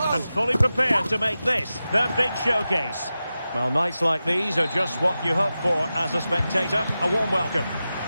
fully prepared to make this their big showcase. Well, nights like these are just what you hope for as a spectator. A warm welcome.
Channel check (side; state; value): both; inverted; correlation -0.93